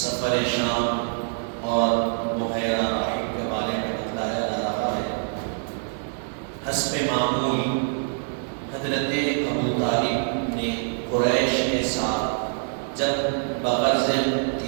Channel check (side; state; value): left; silent; digital silence